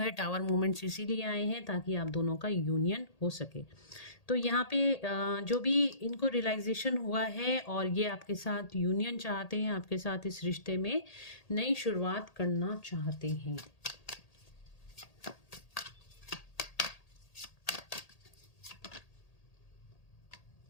है। टावर मोमेंट्स इसीलिए आए हैं ताकि आप दोनों का यूनियन हो सके। तो यहाँ पे जो भी इनको रियलाइजेशन हुआ है और ये आपके साथ यूनियन चाहते हैं, आपके साथ इस रिश्ते में नई शुरुआत करना चाहते हैं।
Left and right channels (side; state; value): right; late; 1.8 ms